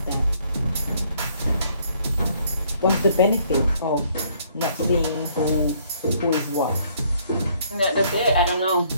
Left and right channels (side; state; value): both; inverted; correlation -0.65